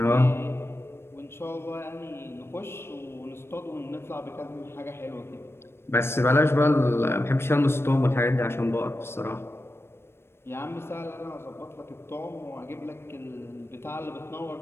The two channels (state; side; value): late; right; 0.12 ms